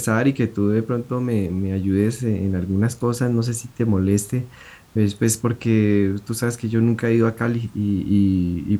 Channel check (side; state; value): both; identical; correlation 1.00